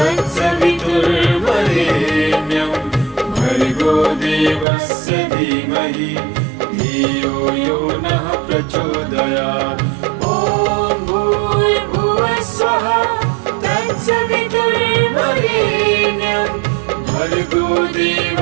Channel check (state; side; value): drops out; left; at 4.7 s